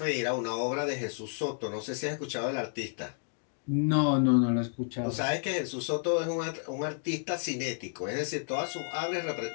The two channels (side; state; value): right; silent; digital silence